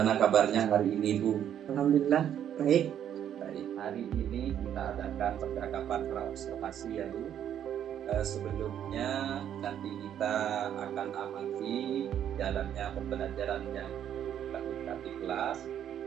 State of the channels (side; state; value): left; quieter; 9.9 dB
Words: kabarnya hari ini Bu? Alhamdulillah baik. Hari ini kita adakan percakapan praobservasi ya Bu. Sebelumnya nanti kita akan amati jalannya pembelajaran yang dilakukan di kelas.